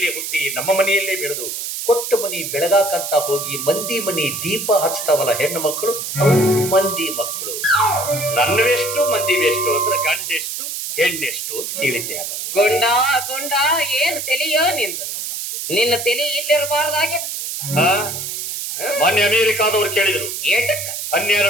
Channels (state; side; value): noise; right; hiss, 5 dB below the sound